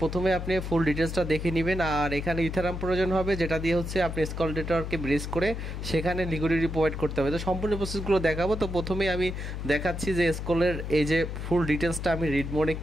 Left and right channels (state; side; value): noise; left; hum, 5 dB below the sound